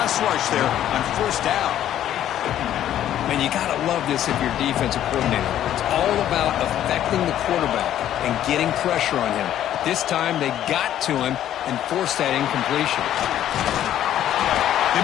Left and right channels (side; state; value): right; quieter; 11.5 dB